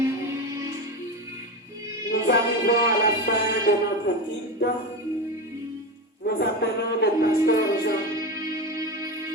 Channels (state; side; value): normal; both; correlation 0.19